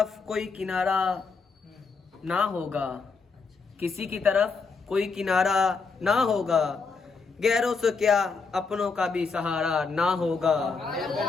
कोई किनारा ना होगा, किसी की तरफ कोई किनारा ना होगा, गैरों से क्या अपनों का भी सहारा ना होगा।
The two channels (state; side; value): quieter; right; 4.7 dB